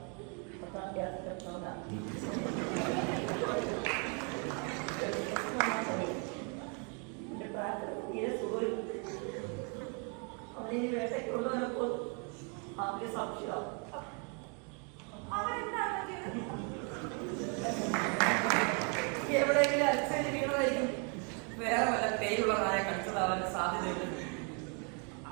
അവനെ വേട്ടയ്ക്ക് കൊണ്ടുവന്നപ്പോൾ അവന്റെ സംശയം എവിടെയെങ്കിലും അലച്ചേരി വീണതായിരിക്കും. വേറെ വല്ല പേരുള്ള നായ കടിച്ചതാവാൻ സാധ്യതയുണ്ട്.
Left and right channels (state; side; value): quieter; left; 37.2 dB